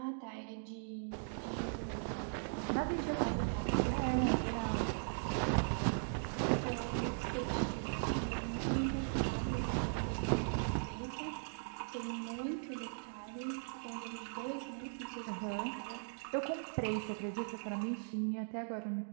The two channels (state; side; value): silent; left; digital silence